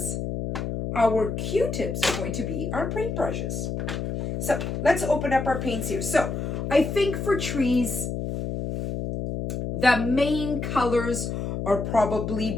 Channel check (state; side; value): noise; left; hum, 3 dB below the sound